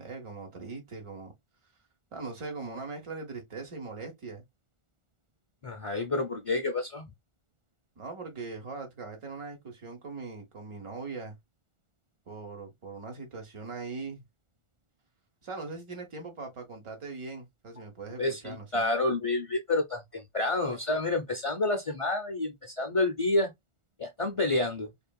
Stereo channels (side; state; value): left; late; 1.4 ms